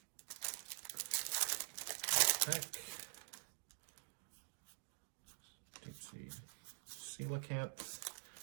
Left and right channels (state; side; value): silent; left; digital silence